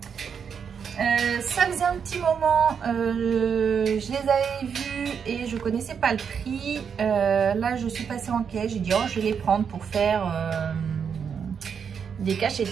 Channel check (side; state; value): left; quieter; 6.9 dB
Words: Ça faisait un petit moment, je les avais vus et je connaissais pas le prix. Là, je suis passée en caisse, j'ai dit oh, je vais les prendre pour faire des cachets de